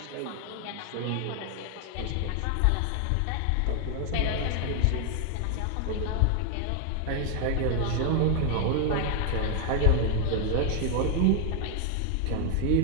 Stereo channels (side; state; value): both; different; correlation 0.00